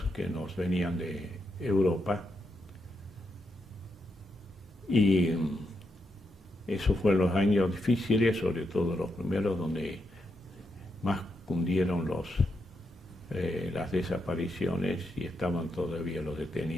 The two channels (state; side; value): normal; both; correlation 0.82